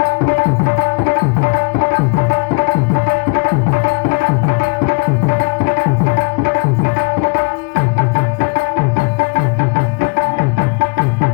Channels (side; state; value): right; quieter; 33.9 dB